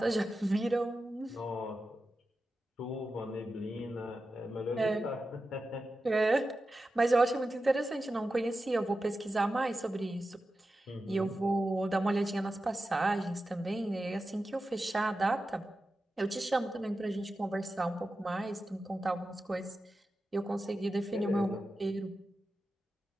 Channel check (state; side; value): normal; both; correlation 0.92